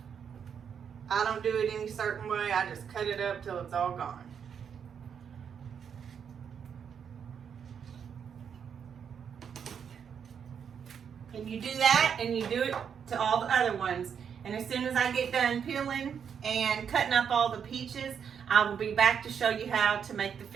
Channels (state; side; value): quieter; left; 7.5 dB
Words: I don't do it any certain way. I just cut it up till it's all gone. And you do that and you do it to all the other ones. And as soon as I get done peeling and cutting up all the peaches, I will be back to show you how to make the